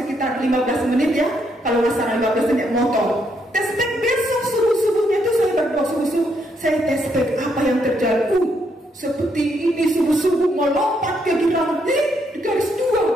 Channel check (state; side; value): normal; both; correlation 0.75